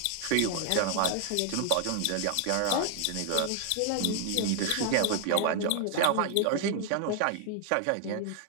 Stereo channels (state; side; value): different; both; correlation 0.00